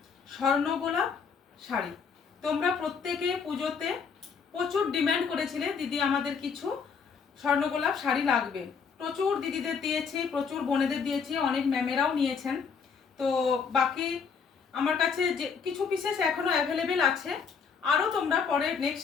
স্বর্ণ গোলাপ শাড়ি। তোমরা প্রত্যেকে পুজোতে প্রচুর ডিমান্ড করেছিলে, দিদি আমাদের কিছু স্বর্ণ গোলাপ শাড়ি লাগবে। প্রচুর দিদিদের দিয়েছি, প্রচুর বোনেদের দিয়েছি, অনেক ম্যামেরাও নিয়েছেন। তো বাকি আমার কাছে যে কিছু পিসেস এখনও অ্যাভেলেবেল আছে, আরও তোমরা পরে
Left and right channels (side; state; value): right; quieter; 6.0 dB